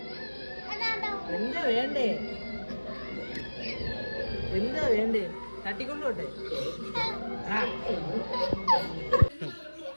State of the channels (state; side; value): inverted; both; correlation -1.00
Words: എന്താ വേണ്ടേ? എന്താ വേണ്ടേ? തട്ടിക്കൊണ്ടോട്ടെ.